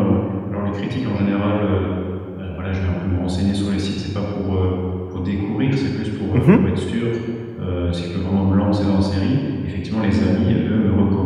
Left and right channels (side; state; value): both; identical; correlation 1.00